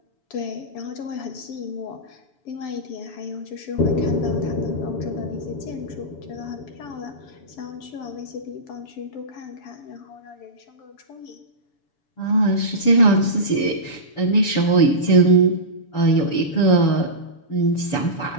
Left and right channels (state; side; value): late; right; 7.1 ms